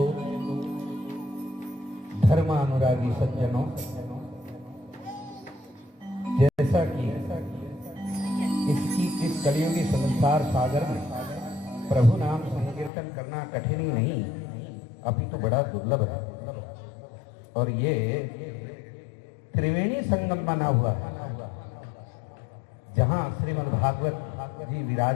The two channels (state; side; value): drops out; right; at 12.9 s